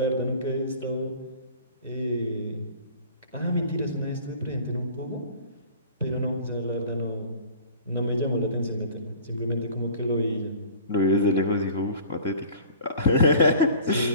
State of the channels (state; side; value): inverted; both; correlation -0.45